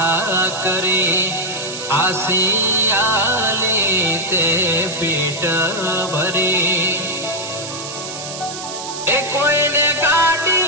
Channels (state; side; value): noise; right; hiss, 9 dB below the sound